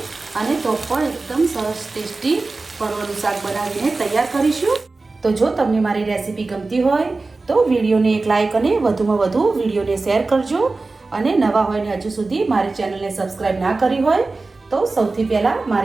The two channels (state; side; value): quieter; left; 3.6 dB